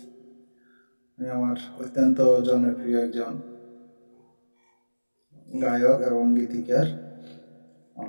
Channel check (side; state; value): both; inverted; correlation -1.00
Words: আমার অত্যন্ত জনপ্রিয় একজন গায়ক এবং গীতিকার।